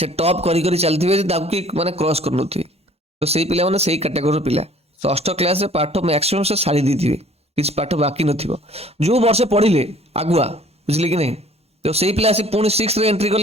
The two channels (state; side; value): normal; both; correlation 0.54